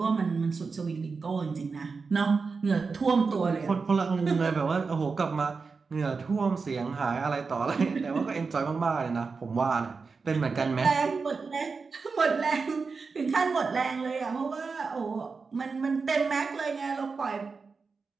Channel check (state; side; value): quieter; left; 4.7 dB